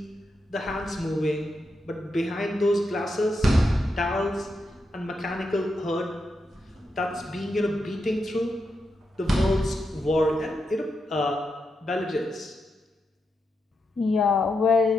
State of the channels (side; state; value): both; normal; correlation 0.85